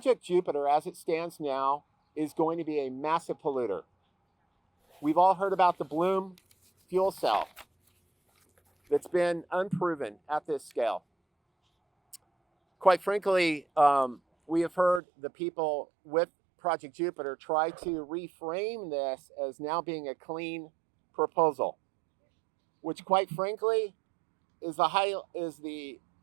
Jupiter, as it stands now, is going to be a massive polluter. We've all heard about the Bloom fuel cell that's been unproven at this scale. Quite frankly, we have heard the people with Project Jupiter try to reframe this as now being a clean proposal, which quite frankly is the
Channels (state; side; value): drops out; left; at 15.0 s